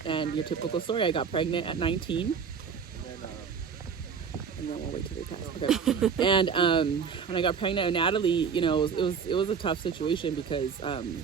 your typical story, I got pregnant at 19. and then we'll wait till they pass. Okay. And when I got pregnant with Natalie, you know, it was a tough situation because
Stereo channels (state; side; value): quieter; left; 6.4 dB